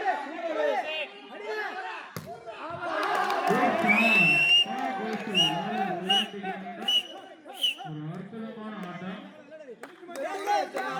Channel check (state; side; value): identical; both; correlation 1.00